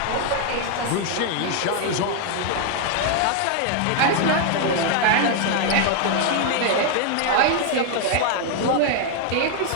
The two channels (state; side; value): different; both; correlation 0.01